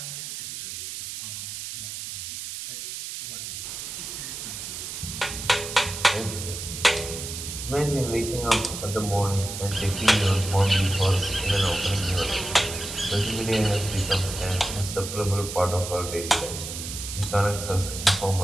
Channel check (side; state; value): right; noise; hiss, 7 dB below the sound